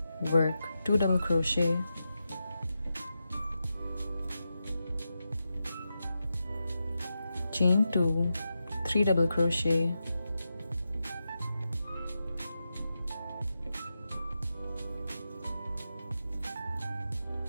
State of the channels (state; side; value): inverted; both; correlation -0.89